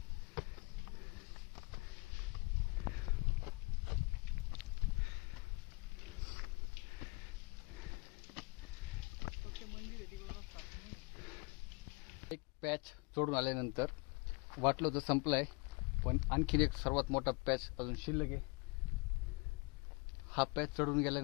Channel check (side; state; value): right; quieter; 28.6 dB